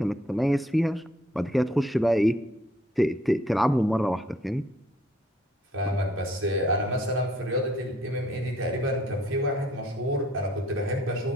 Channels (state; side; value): normal; both; correlation 0.63